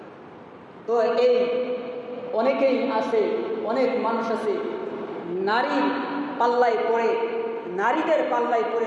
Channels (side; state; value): both; identical; correlation 1.00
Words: তো এই অনেকেই আছে, অনেক মানুষ আছে নারীর পাল্লায় পড়ে, নারীদের পাল্লায় পড়ে